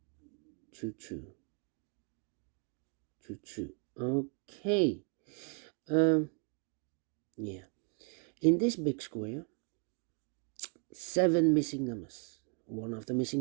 Okay. Yeah. In this big square, 7 missing numbers. One of the missing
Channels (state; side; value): quieter; left; 36.0 dB